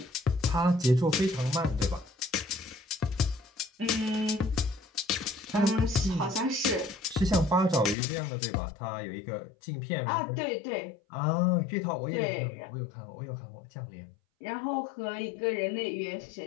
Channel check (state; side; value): drops out; right; at 8.0 s